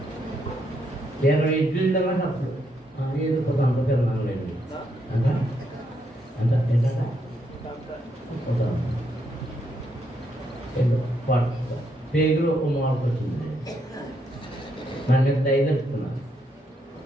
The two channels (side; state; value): both; normal; correlation 0.77